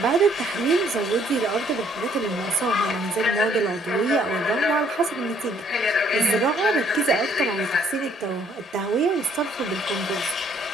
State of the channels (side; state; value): both; normal; correlation 0.64